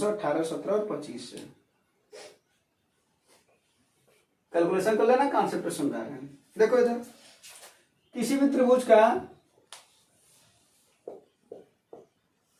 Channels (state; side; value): identical; both; correlation 1.00